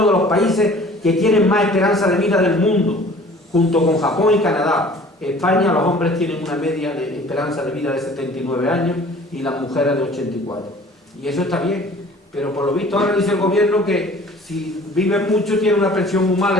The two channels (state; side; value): normal; both; correlation 0.49